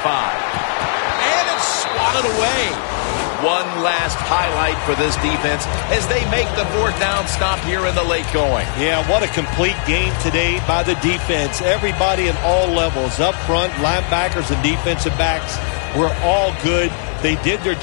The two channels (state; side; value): silent; right; 62 dB below the other